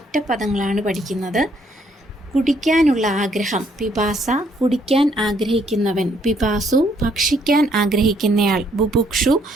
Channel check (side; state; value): both; normal; correlation 0.69